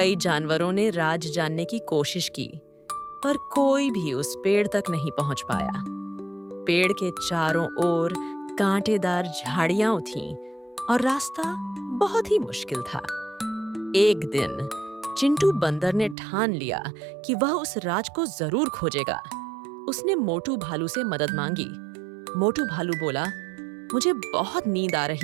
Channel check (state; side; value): drops out; left; at 16.2 s